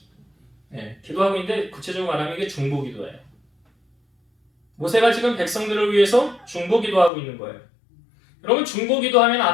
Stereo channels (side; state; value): right; drops out; at 7.1 s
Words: 기도하고 있는데 구체적으로 말하면 이게 중보기도예요. 모세가 지금 백성들을 위해서 중보기도하고 있는 거예요. 여러분 중보기도하면